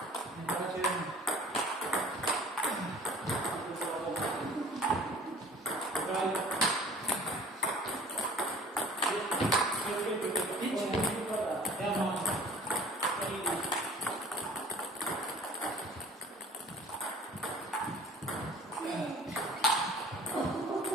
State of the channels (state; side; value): normal; both; correlation 0.48